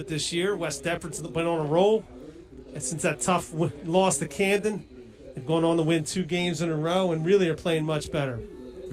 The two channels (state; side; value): identical; both; correlation 1.00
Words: this year. West Deptford's been on a roll. And since that tough loss to Camden, they've gone on to win 2 games in a row and really are playing much better.